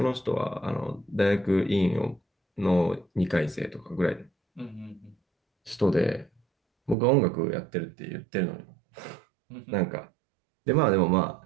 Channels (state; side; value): drops out; left; at 7.0 s